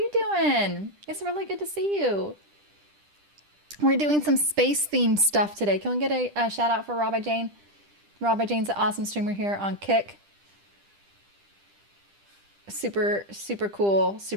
doing? It's really good to see you. We're doing some space themed stuff today. Can we get a shout out for Rabbi Jane? Rabbi Jane's an awesome streamer here on Kick. Super, super cool.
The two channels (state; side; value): late; left; 10 ms